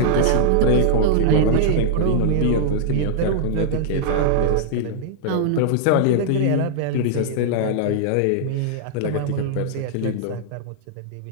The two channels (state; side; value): different; both; correlation -0.01